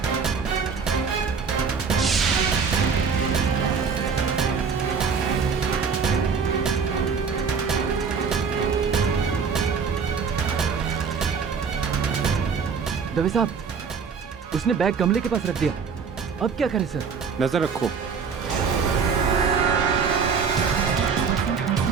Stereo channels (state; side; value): quieter; left; 5.8 dB